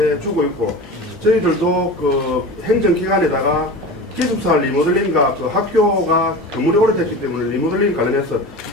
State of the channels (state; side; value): normal; both; correlation 0.32